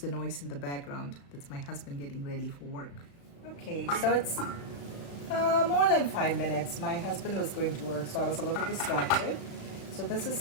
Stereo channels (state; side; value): late; right; 35 ms